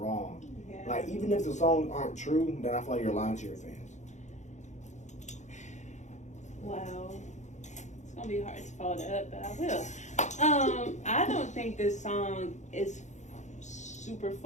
Yeah. Like, even if the songs aren't true, then I feel like you're lying to your fans. Wow, it's gonna be hard to follow that up, but I will. I don't think this song is super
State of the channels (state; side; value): late; right; 0.34 ms